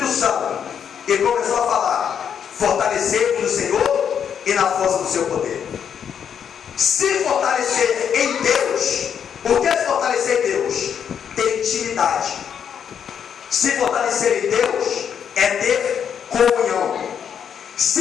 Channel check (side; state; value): right; quieter; 8.0 dB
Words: Santo. E começou a falar: fortalecer no Senhor e na força do seu poder. Se fortalecer em Deus. O que é se fortalecer em Deus? Ter intimidade. Se fortalecer em Deus é ter comunhão.